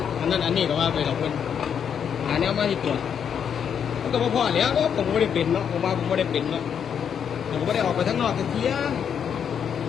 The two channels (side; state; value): right; quieter; 7.9 dB